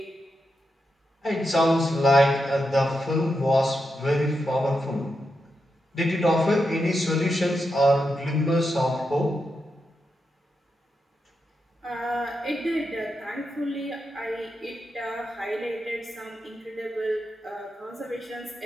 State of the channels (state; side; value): normal; both; correlation 0.86